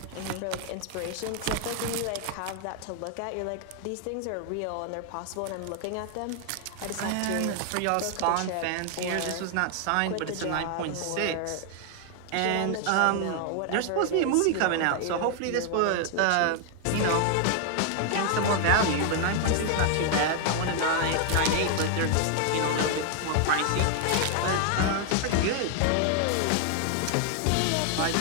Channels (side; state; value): both; different; correlation 0.00